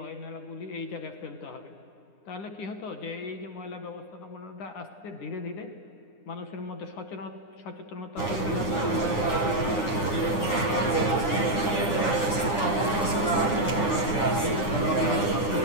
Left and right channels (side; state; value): right; late; 9.8 ms